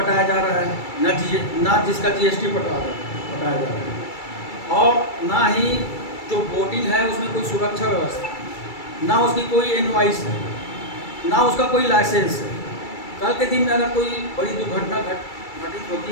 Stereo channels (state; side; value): late; right; 2.3 ms